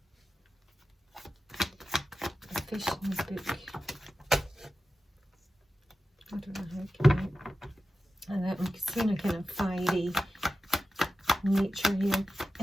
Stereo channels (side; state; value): both; normal; correlation 0.94